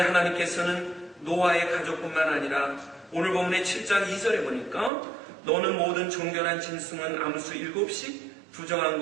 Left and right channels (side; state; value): left; drops out; at 4.9 s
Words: 하나님께서는 노아의 가족뿐만 아니라 오늘 본문의 7장 2절에 보니까 너는 모든 정결한 짐승은 암수 7씩 부정한